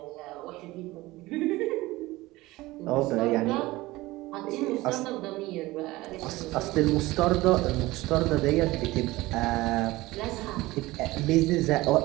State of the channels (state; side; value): quieter; left; 19.3 dB